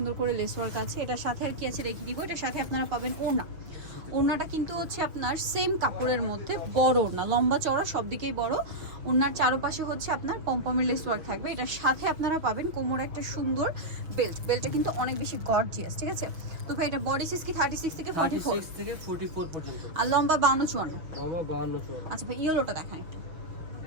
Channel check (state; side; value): late; left; 6.2 ms